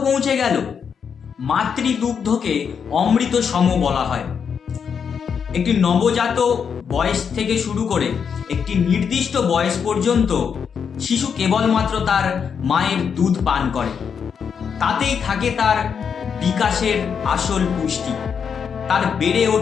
পৌঁছে গেল। মাতৃদুগ্ধকে অমৃত সম বলা হয়। একটি নবজাত বয়স থেকে শুরু করে একটি নির্দিষ্ট বয়স পর্যন্ত শিশু কেবলমাত্র তার মায়ের দুধ পান করে। তাতেই থাকে তার বিকাশের আসল পুষ্টি, তার বেড়ে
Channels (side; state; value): right; quieter; 6.8 dB